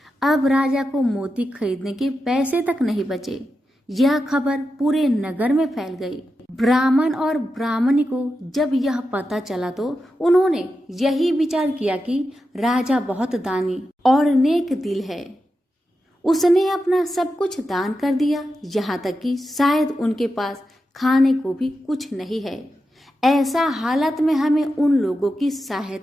अब राजा को मोती खरीदने के पैसे तक नहीं बचे। यह खबर पूरे नगर में फैल गई। ब्राह्मण और ब्राह्मणी को जब यह पता चला तो उन्होंने यही विचार किया कि राजा बहुत दानी और नेक दिल है। उसने अपना सब कुछ दान कर दिया, यहाँ तक कि शायद उनके पास खाने को भी कुछ नहीं है। ऐसा हालत में हमें उन लोगों की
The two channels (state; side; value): normal; both; correlation 0.89